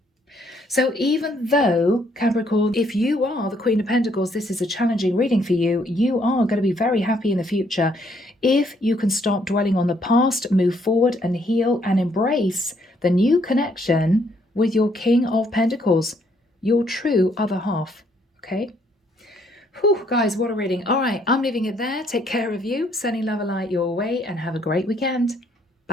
So even though, Capricorn, if you are the Queen of Pentacles, this is a challenging reading for you, you are going to be very happy in the future if you can stop dwelling on the past, move forward and heal and embrace the new connection with your King of Pentacles, your true other half. Okay? Whew, guys, what a reading. All right, I'm leaving it there. Take care of you, sending love and light your way, and have a great weekend.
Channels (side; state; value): both; normal; correlation 0.69